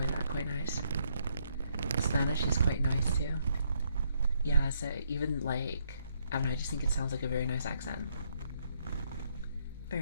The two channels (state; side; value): inverted; both; correlation -0.73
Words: quite nice. Spanish is quite nice too. Yeah, so even like, I don't know, I just think it sounds like a very nice accent.